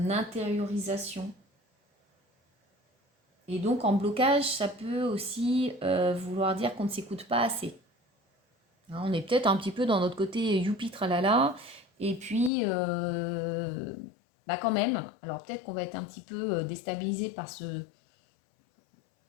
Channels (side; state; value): right; drops out; at 12.5 s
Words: intériorisation. Et donc, en blocage, ça peut aussi vouloir dire qu'on ne s'écoute pas assez. Hein, on est peut-être un petit peu dans notre côté youpi tralala. Et puis, bah quand même, alors peut-être qu'on va être un petit peu déstabilisé